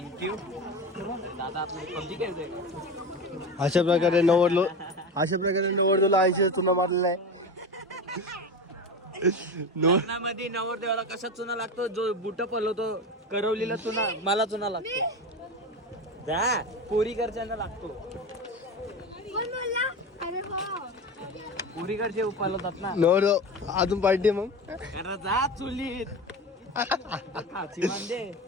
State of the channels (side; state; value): both; normal; correlation 0.25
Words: दादा. आपण पबजी खेळतोय. अशा प्रकारे नवरदेवला 80 चुना मारलेला आहे. लग्नामध्ये नवरदेवाला कसा चुना लागतो. जो बुट पलवतो करवलीला चुना मला चुना लागतो. त्या पोरी घरच्यांना लागतो. कोण बोलला. अरे हो पोरी घरचे पलवतात ना. नवरदेव अजून पार्टी मग. अरे जा चुलीत. खाची बांधे.